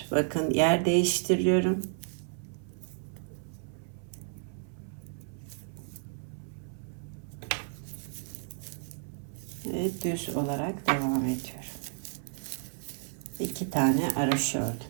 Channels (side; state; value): left; silent; 55 dB below the other